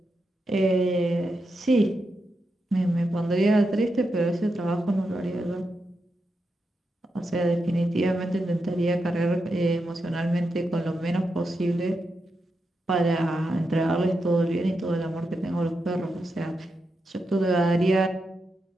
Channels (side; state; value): both; normal; correlation 0.86